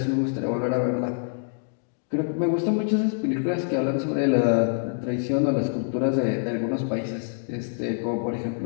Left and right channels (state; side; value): silent; right; digital silence